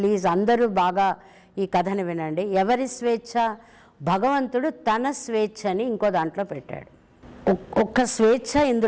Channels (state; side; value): identical; both; correlation 1.00